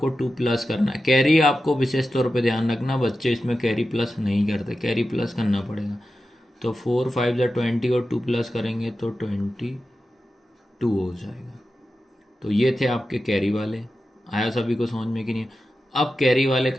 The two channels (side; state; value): both; normal; correlation 0.92